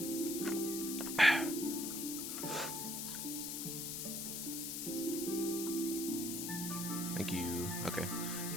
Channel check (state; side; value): noise; left; hiss, 3 dB below the sound